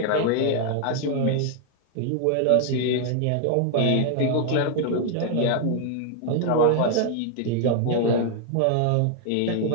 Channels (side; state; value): both; different; correlation 0.00